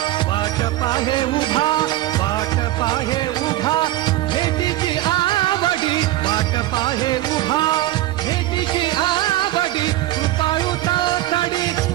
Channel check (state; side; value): quieter; left; 15.4 dB